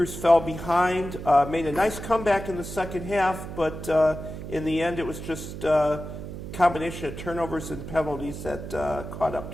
fell behind, made a nice comeback in the second half, but in the end it was just combination of turnovers and penalties that caught up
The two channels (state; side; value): noise; right; hum, 9 dB below the sound